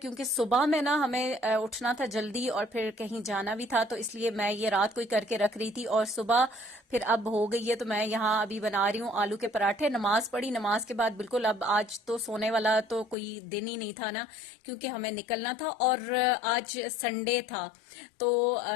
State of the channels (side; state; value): right; drops out; at 13.2 s